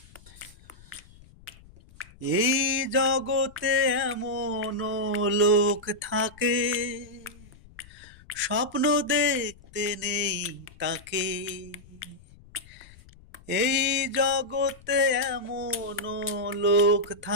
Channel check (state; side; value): noise; left; rumble, 23 dB below the sound